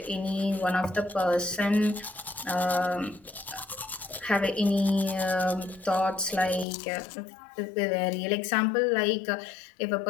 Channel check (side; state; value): right; drops out; at 6.7 s